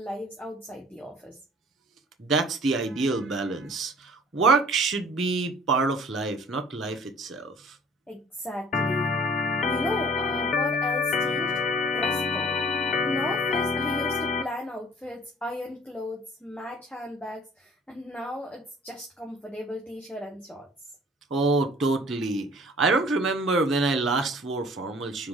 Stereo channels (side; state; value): both; normal; correlation 0.52